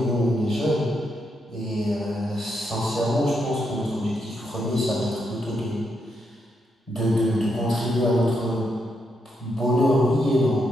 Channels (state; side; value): normal; both; correlation 0.80